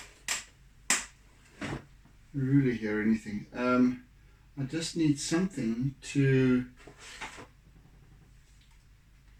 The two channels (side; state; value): both; identical; correlation 1.00